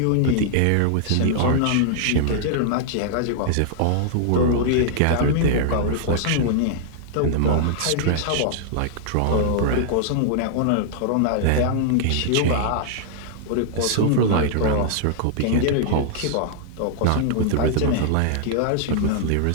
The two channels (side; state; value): both; different; correlation -0.01